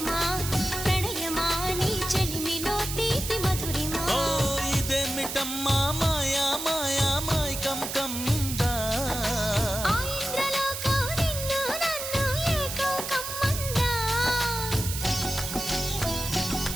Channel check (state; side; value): noise; right; hiss, 5 dB below the sound